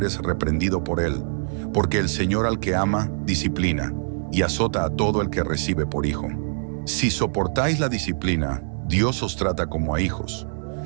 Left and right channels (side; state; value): left; silent; digital silence